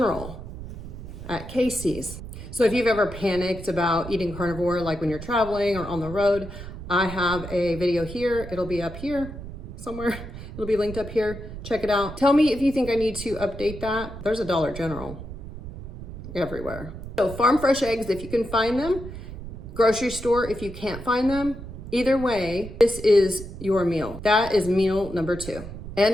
at Casey's. So if you've ever panicked about eating carnivore, like when you're traveling or on the road, I have a video here. It'll be up here somewhere. It'll be linked up here. Check it out. Tell me if you think I need to update that. There's a Dollar General everywhere. So farm fresh eggs, if you can find them. Grocery store, if you can't find them. Either way, this is your meal. That is meal number 2.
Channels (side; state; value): right; noise; rumble, 11 dB below the sound